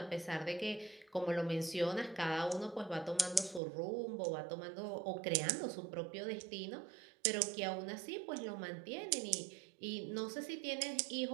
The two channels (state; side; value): drops out; left; at 3.6 s